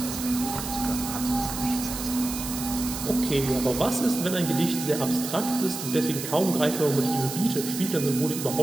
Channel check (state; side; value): noise; right; hiss, 7 dB below the sound